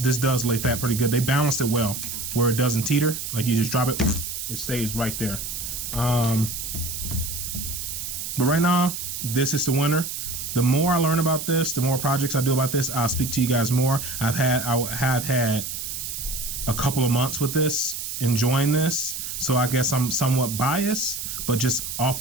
lay fat pretty good. They balanced it well, where it doesn't teeter. Like, you just drop it, it stays right there. But right now, this is the winner. The more I learn about this, the more projects I do about this, I'll speak to you guys more. I have had a couple of months with this, enjoying this, so I guess I'm somewhat biased, but just off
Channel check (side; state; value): right; noise; hiss, 6 dB below the sound